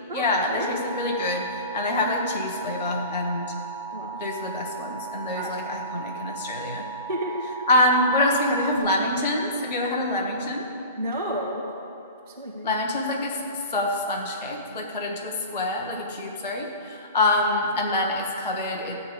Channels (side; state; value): both; inverted; correlation -0.34